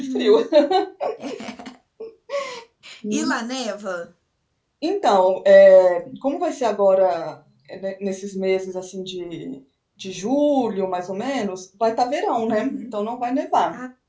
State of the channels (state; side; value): identical; both; correlation 1.00